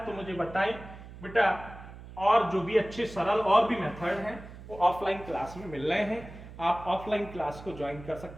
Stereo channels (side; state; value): right; noise; hum, 15 dB below the sound